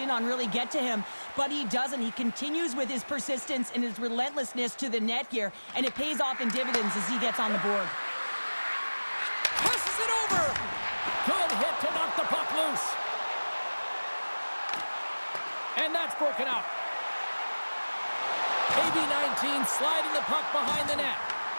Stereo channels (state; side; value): inverted; both; correlation -1.00